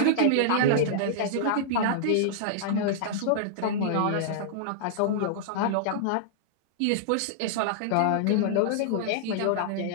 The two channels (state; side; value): different; both; correlation -0.01